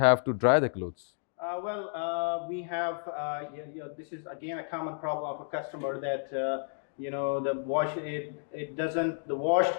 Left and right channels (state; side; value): silent; right; digital silence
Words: to dry the clothes? We have, this is again a common problem of a customer, that the washed